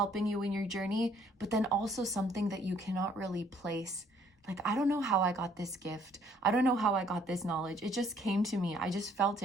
you in your journey, but then also something that you cannot really place. Like, I don't know how I got this gift. I don't know how I got this knowledge. It just came to me. I just felt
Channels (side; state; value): both; normal; correlation 0.63